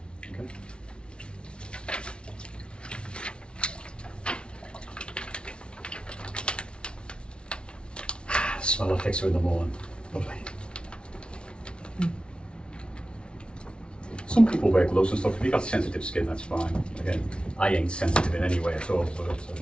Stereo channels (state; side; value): late; right; 0.057 ms